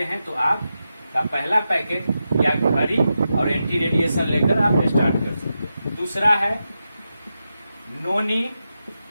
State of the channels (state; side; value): inverted; both; correlation -0.89